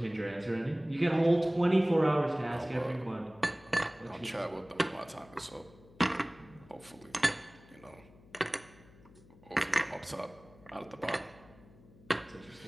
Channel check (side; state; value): left; noise; hum, 24 dB below the sound